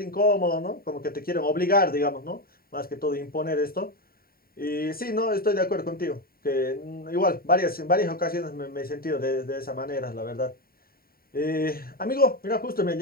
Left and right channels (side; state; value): right; late; 0.43 ms